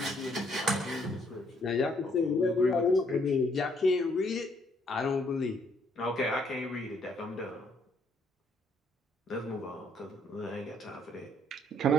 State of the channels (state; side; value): normal; both; correlation 0.68